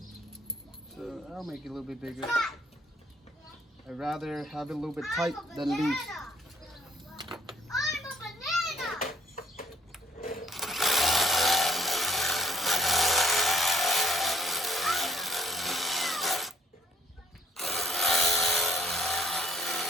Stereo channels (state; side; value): normal; both; correlation 0.62